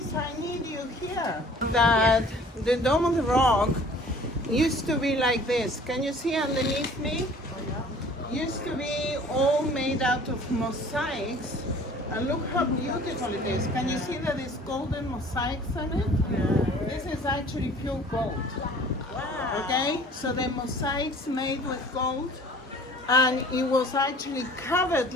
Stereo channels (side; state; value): both; normal; correlation 0.49